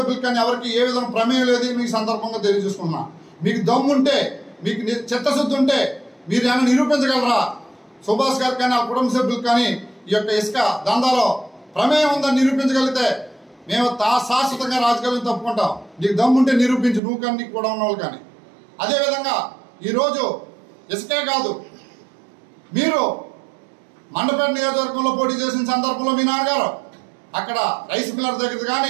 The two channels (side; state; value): left; drops out; at 17.0 s